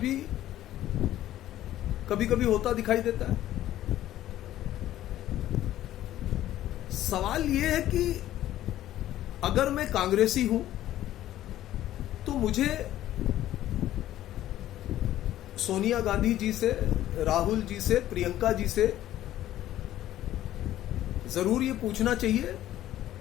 कभी कभी होता दिखाई देता है। सवाल यह है कि अगर मैं कांग्रेसी हूं तो मुझे सोनिया गांधी जी से, राहुल जी से, प्रियंका जी से जरूर ये पूछना चाहिए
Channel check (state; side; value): quieter; right; 13.4 dB